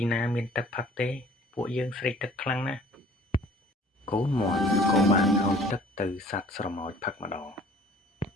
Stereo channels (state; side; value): normal; both; correlation 0.52